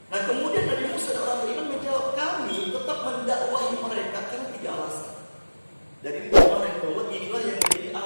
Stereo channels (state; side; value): inverted; both; correlation -1.00